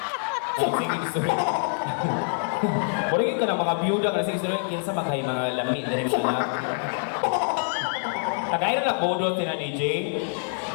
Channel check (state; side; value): silent; right; 61 dB below the other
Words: Sige, sorry. Murag ka na mga biyuda kasi sorry kinsa maghay mga lami na rin mga. Tagay na bodo tina DJ.